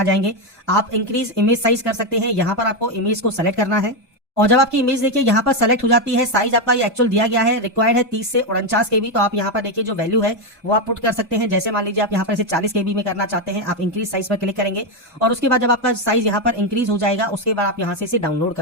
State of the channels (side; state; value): both; normal; correlation 0.07